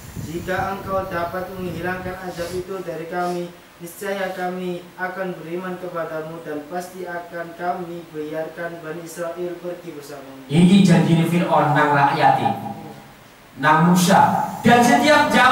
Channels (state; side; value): identical; both; correlation 1.00